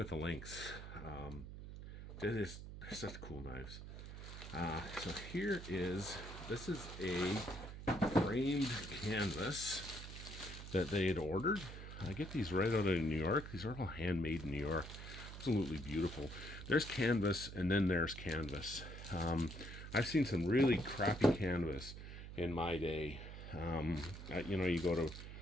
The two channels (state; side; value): noise; right; hum, 10 dB below the sound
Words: the Lynx. They're such cool knives. So this is a framed canvas that they had ordered. I get these right out of New York. These are all handmade in New York. Absolutely beautiful. There's canvas, and then there's canvas. I've seen some really crappy canvas in my day. You go to